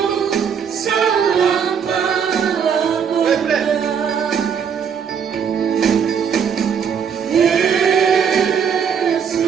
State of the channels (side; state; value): left; quieter; 7.2 dB